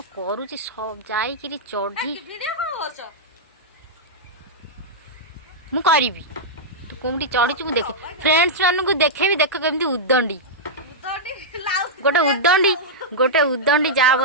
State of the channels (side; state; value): both; normal; correlation -0.09